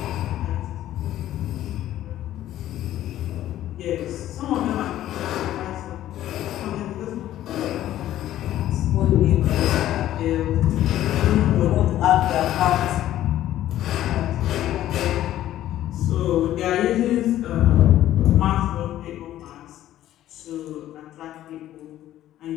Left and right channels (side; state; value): right; quieter; 13.1 dB